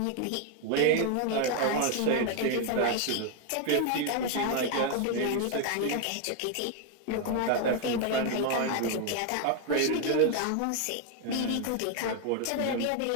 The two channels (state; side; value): different; both; correlation 0.01